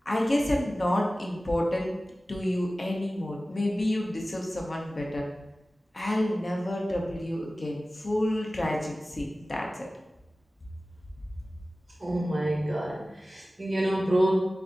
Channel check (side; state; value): both; normal; correlation 0.96